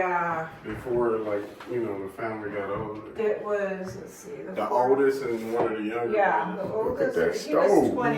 Before, the family got older. it was, let's see. The oldest and one of the younger. Yeah, the Look at oldest, that he was stove,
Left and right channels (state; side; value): identical; both; correlation 1.00